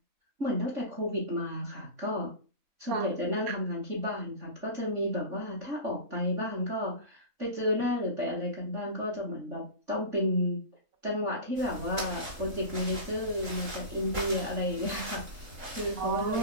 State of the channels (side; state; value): left; late; 3.7 ms